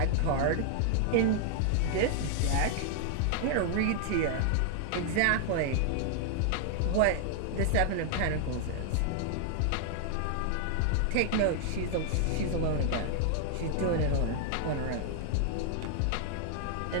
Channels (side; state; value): both; different; correlation 0.00